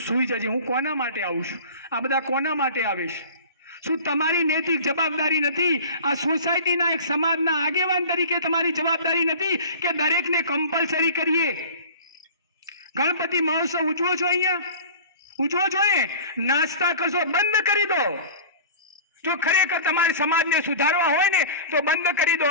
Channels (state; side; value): inverted; both; correlation -0.39